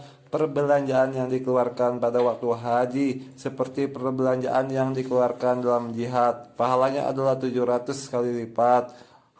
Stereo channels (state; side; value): identical; both; correlation 1.00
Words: perbelanjaan yang dikeluarkan pada waktu haji seperti perbelanjaan yang dikeluarkan dalam jihad, pahalanya adalah 700 kali lipat.